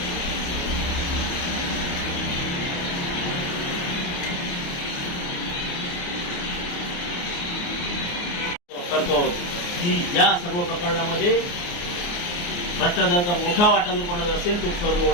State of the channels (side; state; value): right; late; 29 ms